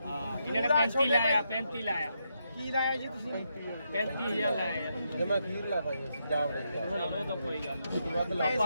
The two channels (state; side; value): inverted; both; correlation -0.81